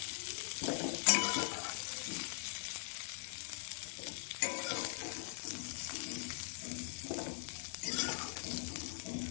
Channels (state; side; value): silent; right; digital silence